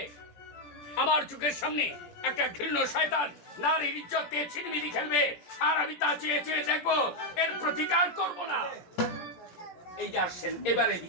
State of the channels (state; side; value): late; right; 17 ms